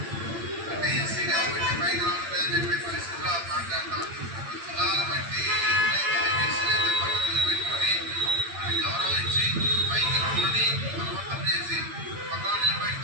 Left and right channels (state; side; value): late; left; 8.8 ms